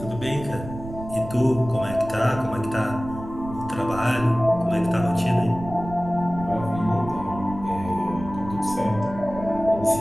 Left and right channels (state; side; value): noise; right; rumble, 12 dB below the sound